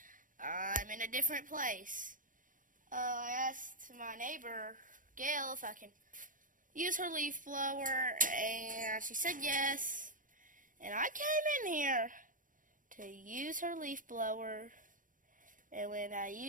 I'm in a different place. I asked my neighbor, Gail, if I can use her leaf blower, and she said yes. And I came in here to use her leaf blower, and when I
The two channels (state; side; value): late; left; 0.39 ms